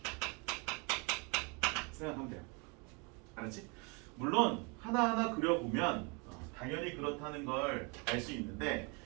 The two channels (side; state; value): left; quieter; 31.0 dB